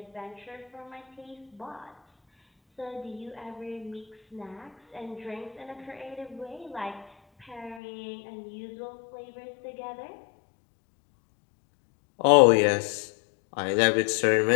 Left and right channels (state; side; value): drops out; right; at 7.8 s